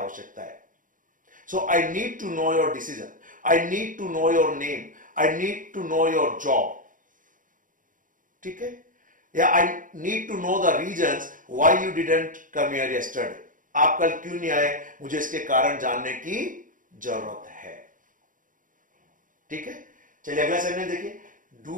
है। So I need to know your decision, I need to know your name, I need to know your job, ठीक है, या I need to know the reasons why you didn't come here yesterday, आप कल क्यों नहीं आए, मुझे इसके कारण जानने की जरूरत है, ठीक है। चलिए अगला सेगमेंट देखिए, do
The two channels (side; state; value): left; late; 0.39 ms